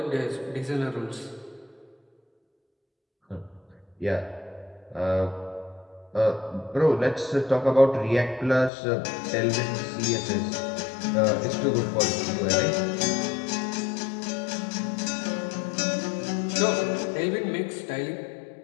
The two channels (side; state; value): right; drops out; at 8.7 s